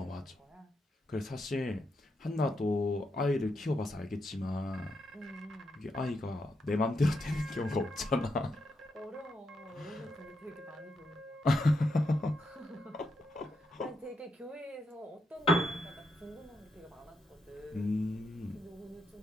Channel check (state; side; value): normal; both; correlation 0.82